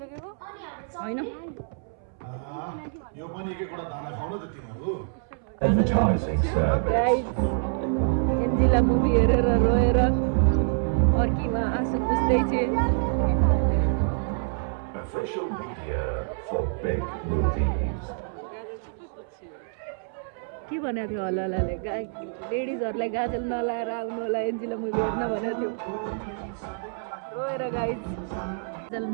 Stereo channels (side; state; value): left; silent; 60 dB below the other